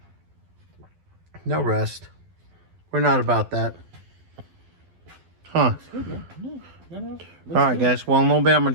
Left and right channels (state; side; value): late; left; 12 ms